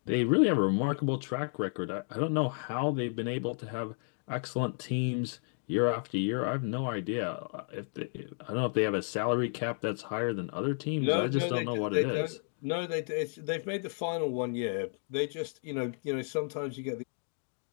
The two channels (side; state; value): right; silent; 56 dB below the other